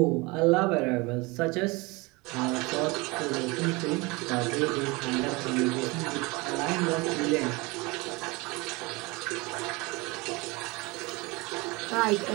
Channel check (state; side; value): quieter; left; 25.1 dB